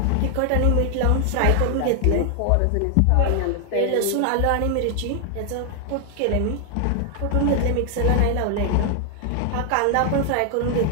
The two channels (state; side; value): different; both; correlation 0.00